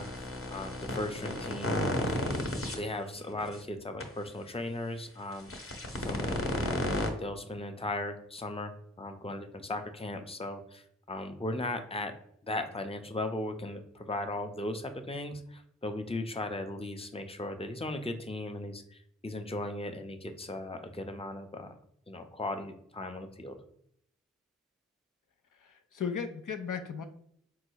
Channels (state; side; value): normal; both; correlation 0.48